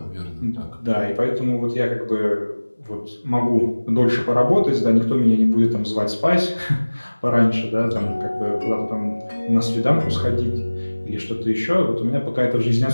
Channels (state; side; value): inverted; both; correlation -1.00